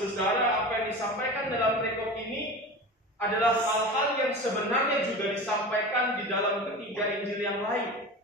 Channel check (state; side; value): normal; both; correlation 0.31